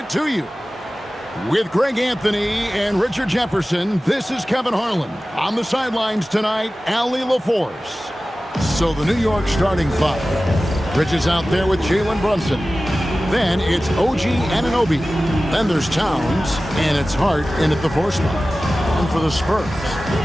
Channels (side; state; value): both; normal; correlation 0.96